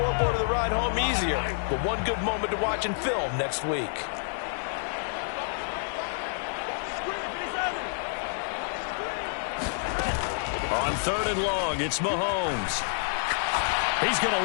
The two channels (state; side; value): silent; right; digital silence